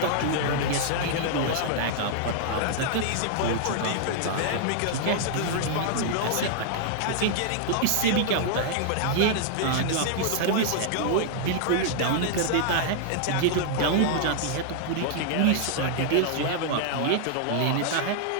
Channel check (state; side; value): different; both; correlation -0.01